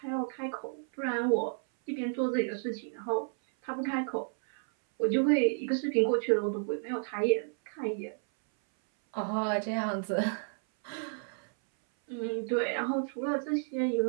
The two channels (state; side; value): silent; left; 57 dB below the other